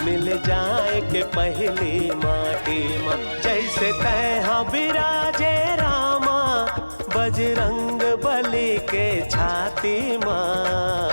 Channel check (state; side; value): inverted; both; correlation -1.00